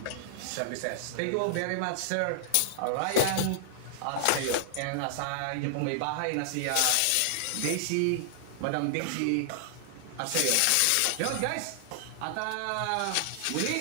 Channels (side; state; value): both; different; correlation -0.01